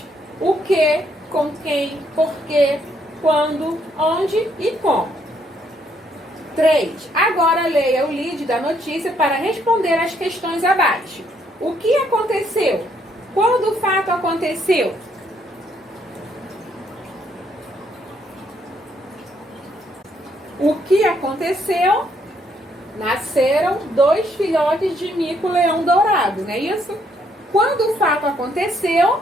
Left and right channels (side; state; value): both; normal; correlation 0.71